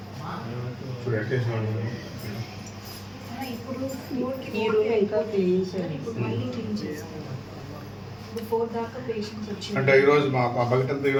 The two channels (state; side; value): identical; both; correlation 1.00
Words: ఇప్పుడు ఎట్టేసిన ఇప్పుడు ఈ రూమ్ ఇంకా క్లీన్ చేయాలి. ఇప్పుడు మళ్ళీ క్లీన్ చేస్తారు. ఇప్పుడు 4 దాకా పేషెంట్స్ వచ్చి అంటే ఈరోజు మా బకెట్ అంతా